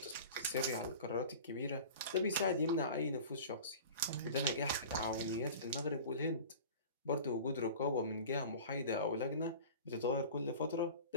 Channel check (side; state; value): both; inverted; correlation -0.38